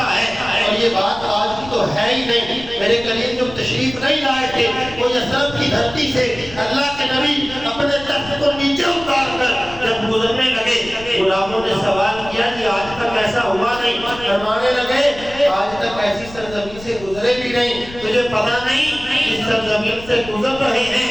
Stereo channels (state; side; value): noise; left; rumble, 16 dB below the sound